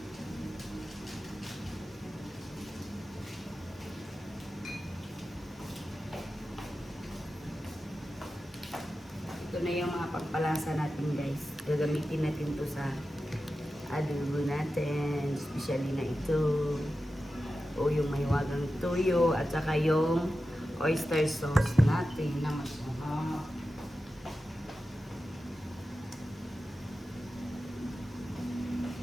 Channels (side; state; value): both; normal; correlation 0.92